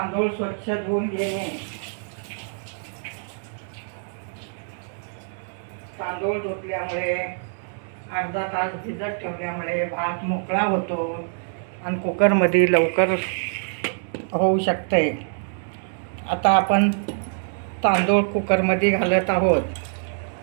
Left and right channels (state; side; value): silent; left; digital silence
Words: स्वच्छ धुवून घेणे। तांदूळ धुतल्यामुळे अर्धा तास भिजत ठेवल्यामुळे भात मोकळा होतो आणि कुकरमध्ये लवकर होऊ शकते। आता आपण तांदूळ कुकरमध्ये घालत आहोत।